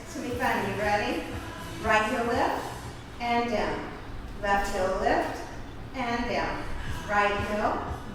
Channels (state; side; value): identical; both; correlation 1.00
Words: It's going to be fun. You ready? Right heel lift and down. Left heel lift and down. Right heel,